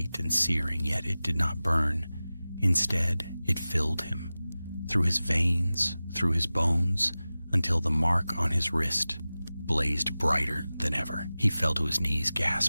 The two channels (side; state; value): both; inverted; correlation -0.97